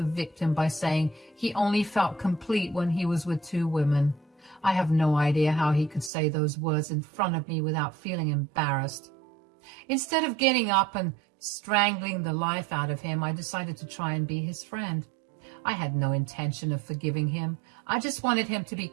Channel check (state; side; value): drops out; left; at 6.1 s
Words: victim by saying he only felt complete when he was with 2 women. I have no idea how he could say those words in front of me without feeling embarrassed. Instead of getting up and strangling the life out of him, I decided to try and be his friend. I had no intention of forgiving him. I just wanted him to be